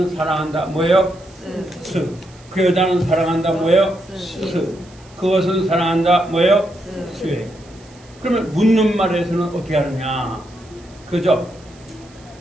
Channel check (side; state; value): right; noise; hiss, 27 dB below the sound